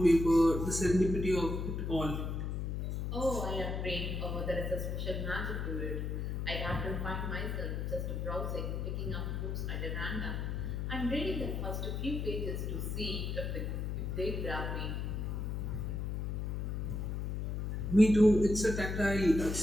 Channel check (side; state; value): left; noise; hum, 2 dB below the sound